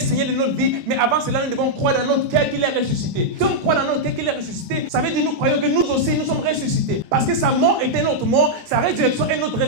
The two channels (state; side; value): late; left; 11 ms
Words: de notre vie. Mais avant cela, nous devons croire dans notre cœur qu'il est ressuscité. Si on croit dans notre cœur qu'il est ressuscité, ça veut dire que nous croyons que nous aussi, nous sommes ressuscités. Parce que sa mort était notre mort, sa résurrection est notre